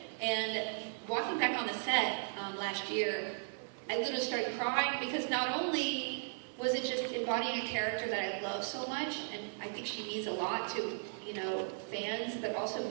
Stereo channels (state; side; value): silent; left; digital silence